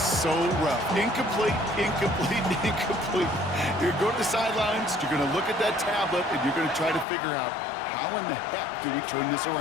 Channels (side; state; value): right; drops out; at 7.1 s